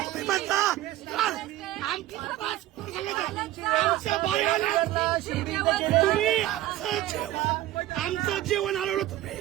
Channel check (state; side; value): quieter; left; 14.9 dB